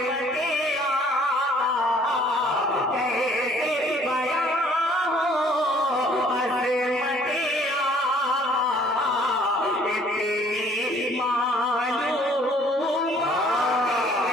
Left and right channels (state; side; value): normal; both; correlation 0.58